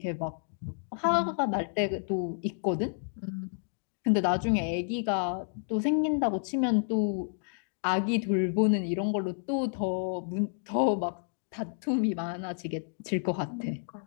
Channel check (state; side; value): silent; right; digital silence